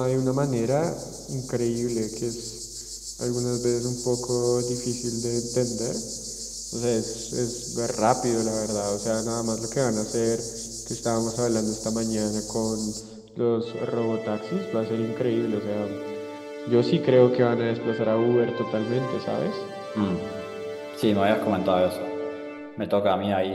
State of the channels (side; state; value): both; identical; correlation 1.00